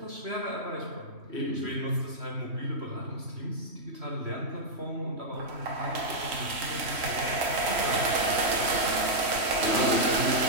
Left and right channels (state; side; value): late; left; 3.1 ms